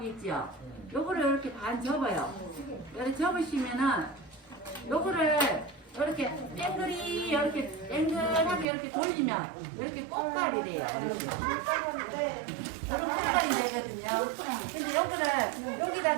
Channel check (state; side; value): drops out; left; at 8.7 s